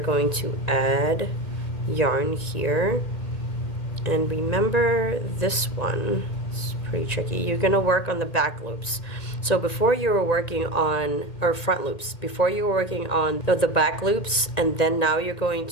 to add yarn here. And remember this one, it's pretty tricky. You're gonna work on the back loops. So before you were working on, or front loops, before you were working on the back loops, and then now you're going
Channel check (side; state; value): right; late; 1.9 ms